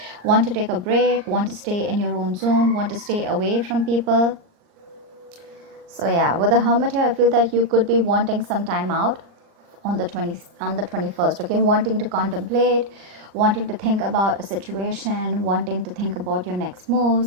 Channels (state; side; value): late; left; 39 ms